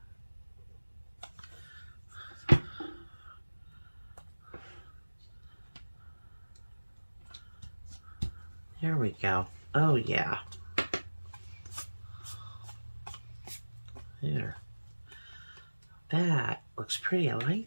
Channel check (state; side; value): inverted; both; correlation -1.00